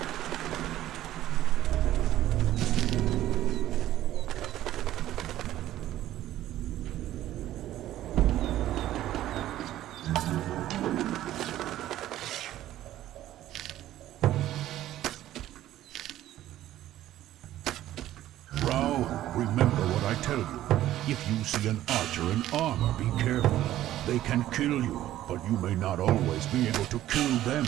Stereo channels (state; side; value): quieter; left; 13.5 dB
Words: Rao, remember what I tell you. If you see an archer in armor, be careful. They can kill you, but you may not always be able to kill them,